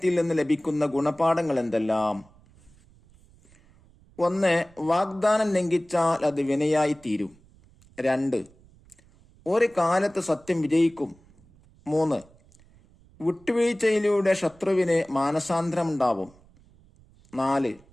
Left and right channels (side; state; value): right; noise; rumble, 28 dB below the sound